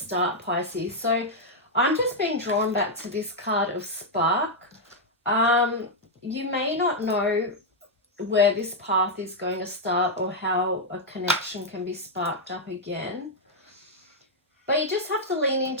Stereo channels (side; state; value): both; normal; correlation -0.03